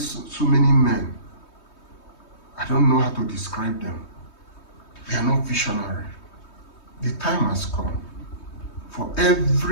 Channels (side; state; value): right; late; 3.2 ms